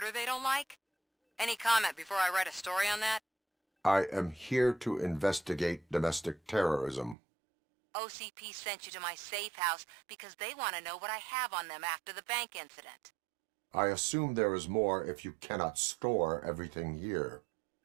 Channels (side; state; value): left; drops out; at 7.2 s